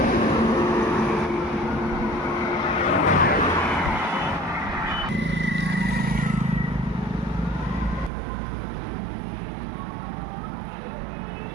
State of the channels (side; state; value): left; drops out; at 8.1 s